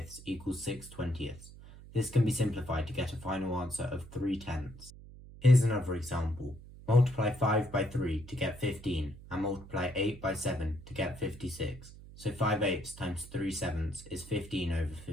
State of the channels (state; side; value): noise; right; hum, 17 dB below the sound